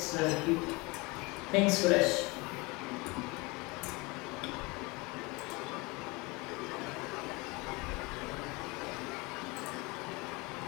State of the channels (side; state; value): right; quieter; 25.6 dB